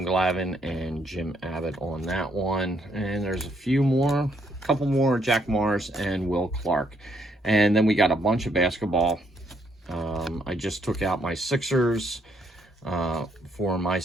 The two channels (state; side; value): normal; both; correlation 0.72